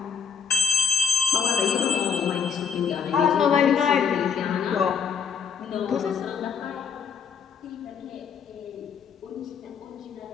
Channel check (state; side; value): quieter; right; 6.7 dB